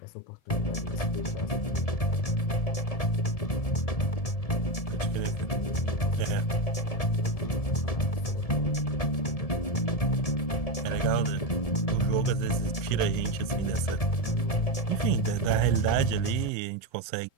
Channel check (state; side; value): late; right; 1.7 ms